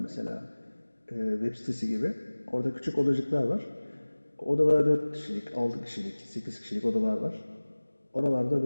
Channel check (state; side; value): inverted; both; correlation -1.00